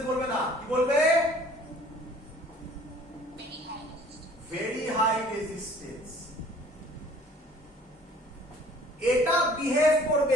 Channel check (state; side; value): normal; both; correlation 0.53